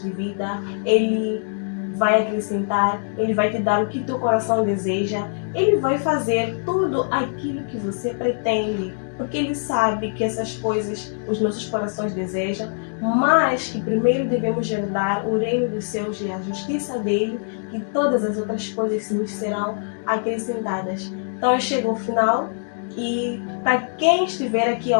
de vida. Ele vai acrescentar, Ele vai te dar o que teu coração deseja. Ele vai fazer tudo aquilo que você pretende, porque Ele sabe que essas coisas os nossos corações desejam, mas que primeiro devemos herdar o reino dos céus e a justiça dEle, que todas as outras coisas nos serão acrescentadas. Então eu chego ao final e para quem estiver aqui a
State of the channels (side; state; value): right; silent; digital silence